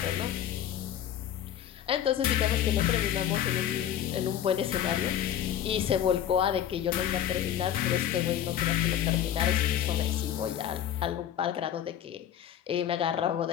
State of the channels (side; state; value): right; quieter; 10.5 dB